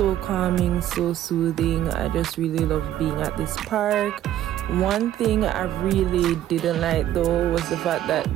calming, so soothing. I just really love being at this park. One thing I really didn't like though was the fact that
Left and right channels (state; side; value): quieter; left; 12.3 dB